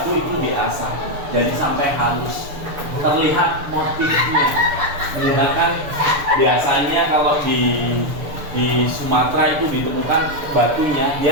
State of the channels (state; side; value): late; left; 6.8 ms